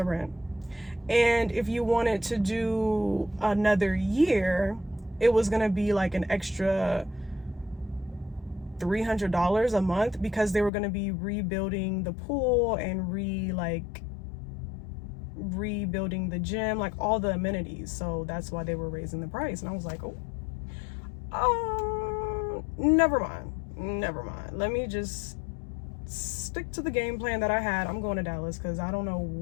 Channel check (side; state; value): right; drops out; at 10.7 s